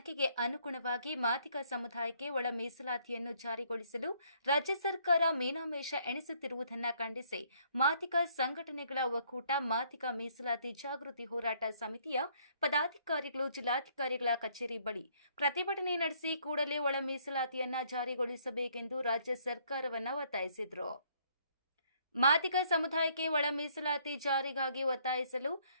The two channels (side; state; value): both; inverted; correlation -0.65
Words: ಅನುಗುಣವಾಗಿ ಮಾದಿಗ ಸಮುದಾಯಕ್ಕೆ ಒಳ ಮೀಸಲಾತಿಯನ್ನು ಜಾರಿಗೊಳಿಸಲು ರಾಜ್ಯ ಸರ್ಕಾರ ಮೀನಾಮೇಷ ಎಣಿಸುತ್ತಿರುವುದನ್ನು ಖಂಡಿಸಿ ಮಾದಿಗ ಸಂಘಟನೆಗಳ ಒಕ್ಕೂಟ ಮಾದಿಗ ಮೀಸಲಾತಿ ಜಾಗೃತಿ ಹೋರಾಟ ಸಮಿತಿಯ ಪದಾಧಿಕಾರಿಗಳು ಜಿಲ್ಲಾಧಿಕಾರಿಗಳ ಕಚೇರಿ ಬಳಿ ಪ್ರತಿಭಟನೆ ನಡೆಸಿ ಕೂಡಲೇ ಒಳ ಮೀಸಲಾತಿಯನ್ನು ಜಾರಿಗೊಳಿಸಬೇಕೆಂದು ರಾಜ್ಯ ಸರ್ಕಾರವನ್ನು ಒತ್ತಾಯಿಸಿದರು. ಮಾದಿಗ ಸಮುದಾಯಕ್ಕೆ ಒಳ ಮೀಸಲಾತಿ ಜಾರಿಗಾಗಿ ಒತ್ತಾಯಿಸಲು